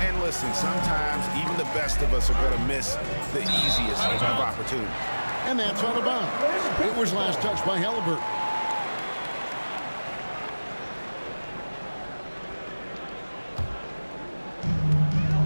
And listen, sometimes even the best of us are going to miss the easiest of opportunities. And that's out of bounds. It was last touched by Halliburton.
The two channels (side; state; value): both; inverted; correlation -1.00